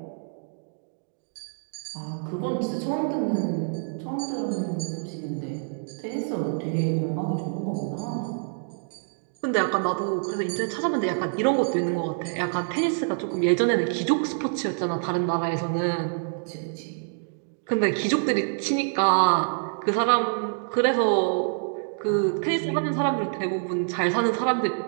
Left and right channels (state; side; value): silent; left; digital silence